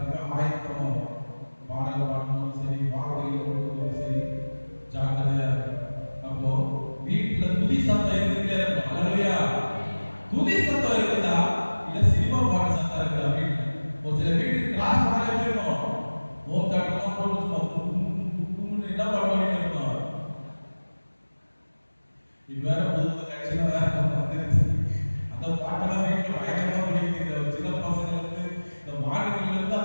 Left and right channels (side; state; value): both; inverted; correlation -1.00